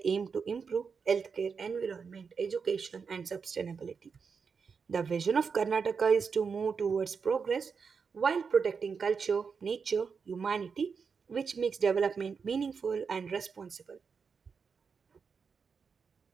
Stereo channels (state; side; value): quieter; left; 5.7 dB